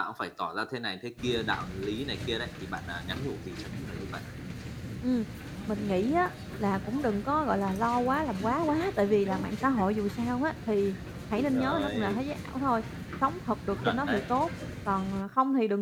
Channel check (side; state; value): both; identical; correlation 1.00